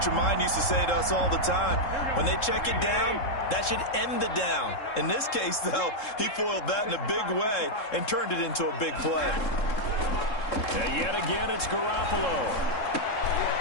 of mine used to say to us all the time, when they check it down, that should end the down. In this case, though, he foiled that in a big way and turned it into a big play. And yet again, it's Garoppolo.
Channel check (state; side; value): late; right; 3.7 ms